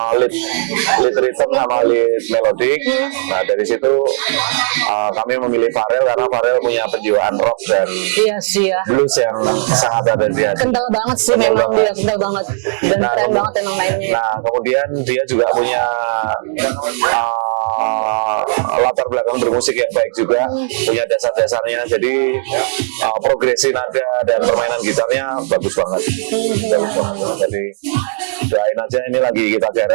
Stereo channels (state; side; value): silent; left; digital silence